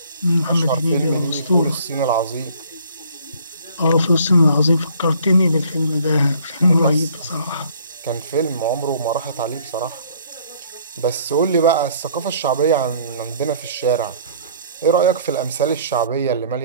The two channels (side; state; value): both; inverted; correlation -0.57